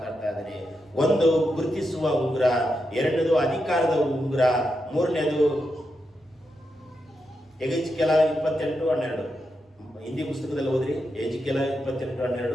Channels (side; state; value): both; normal; correlation 0.86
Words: ಇದ್ದೇನೆ. ಒಂದು ಗುರುತಿಸುವ ಉಂಗುರ, ಎರಡನೇದು ಅಧಿಕಾರದ ಉಂಗುರ, ಮೂರನೇದು ಎಜಿಕೆಲ 28:12. ಹಿಂದಿ ಪುಸ್ತಕದಲ್ಲಿ ಹೋದ್ರಿ, ಎಜಿಕೆಲ